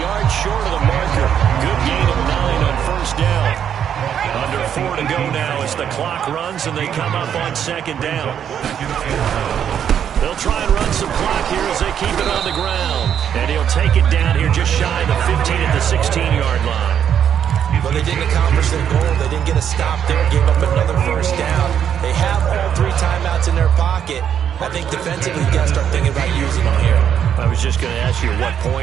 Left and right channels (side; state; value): left; quieter; 8.8 dB